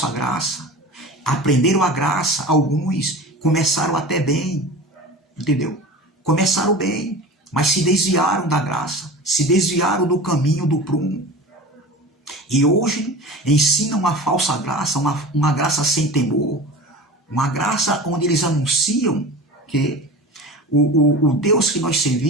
graça. Aprenderam a graça, alguns começaram até bem. Entendeu? Começaram bem, mas se desviaram da graça. Se desviaram do caminho do prumo. E hoje ensinam uma falsa graça, uma graça sem temor. Uma graça onde eles anunciam que o Deus que nós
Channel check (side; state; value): both; normal; correlation 0.34